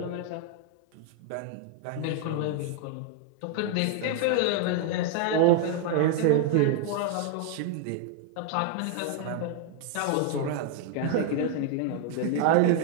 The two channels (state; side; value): different; both; correlation 0.00